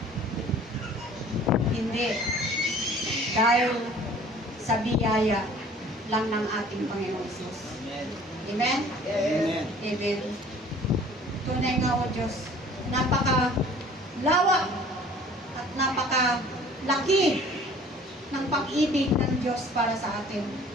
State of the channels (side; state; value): both; normal; correlation 0.50